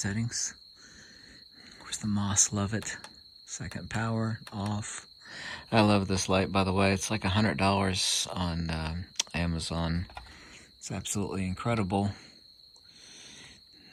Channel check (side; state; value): both; identical; correlation 1.00